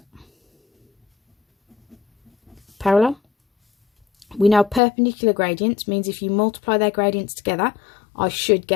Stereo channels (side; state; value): right; drops out; at 4.8 s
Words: parallel. We know perpendicular gradients means if you multiply their gradients together, I should